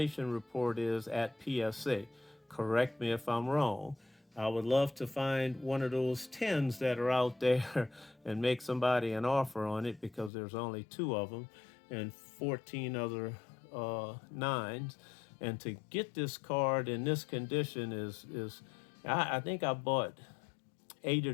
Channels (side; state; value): right; drops out; at 10.3 s